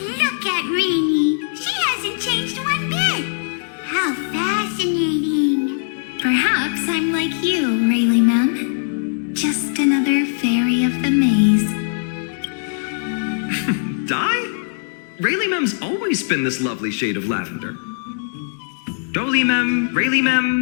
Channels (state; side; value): silent; right; digital silence